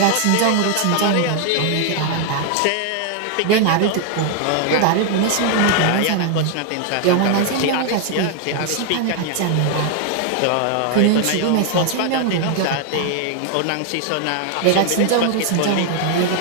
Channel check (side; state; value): both; different; correlation 0.00